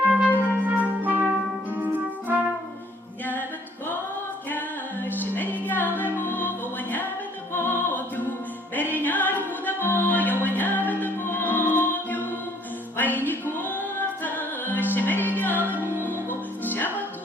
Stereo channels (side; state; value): both; normal; correlation 0.61